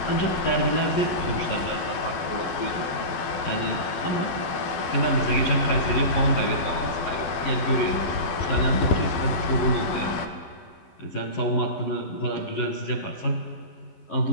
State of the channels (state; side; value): late; right; 12 ms